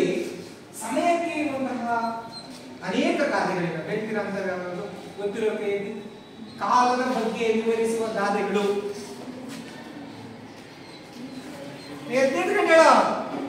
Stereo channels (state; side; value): identical; both; correlation 1.00